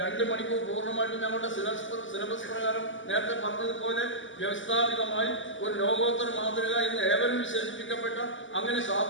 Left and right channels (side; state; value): right; late; 0.55 ms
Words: മണിക്കൂർ പൂർണ്ണമായിട്ടും ഞങ്ങളുടെ സിലബസ് പ്രകാരം നേരത്തെ പറഞ്ഞതുപോലെ വ്യവസ്ഥാപിതമായി ഒരു ലോകോത്തര മാതൃക എന്ന് ഏവരും വിശേഷിപ്പിക്കപ്പെട്ട അങ്ങനെ